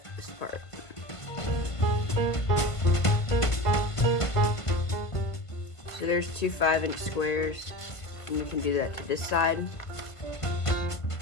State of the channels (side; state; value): right; late; 1.5 ms